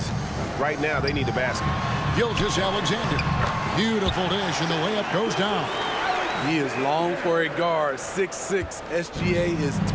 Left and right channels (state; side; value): identical; both; correlation 1.00